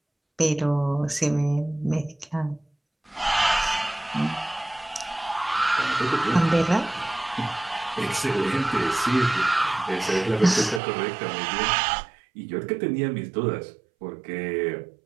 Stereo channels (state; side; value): drops out; left; at 10.8 s